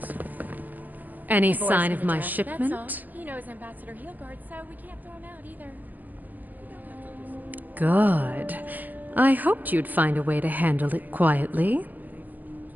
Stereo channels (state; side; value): late; left; 0.083 ms